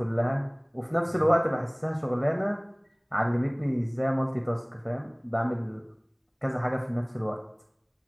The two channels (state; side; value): identical; both; correlation 1.00